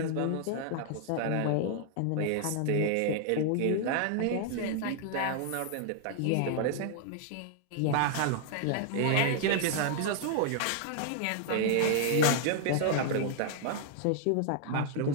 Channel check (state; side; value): different; both; correlation -0.01